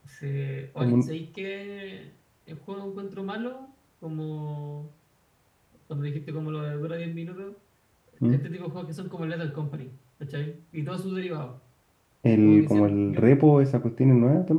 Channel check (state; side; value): identical; both; correlation 1.00